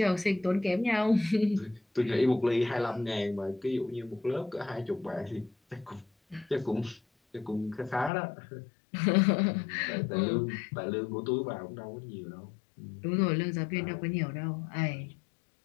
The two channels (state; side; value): drops out; right; at 8.1 s